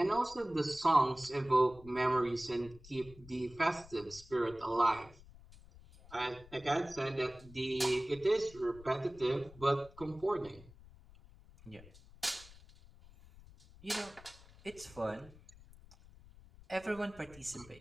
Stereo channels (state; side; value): noise; left; rumble, 21 dB below the sound